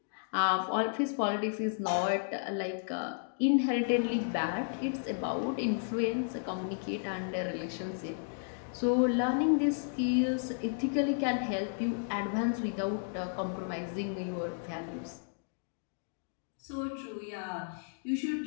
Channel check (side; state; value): right; silent; digital silence